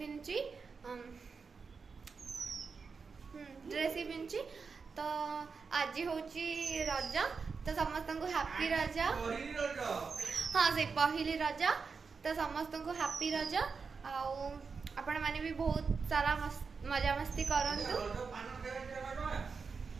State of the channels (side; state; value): left; quieter; 5.1 dB